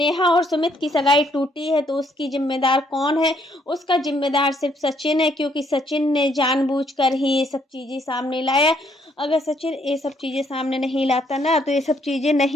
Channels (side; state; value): both; normal; correlation 0.69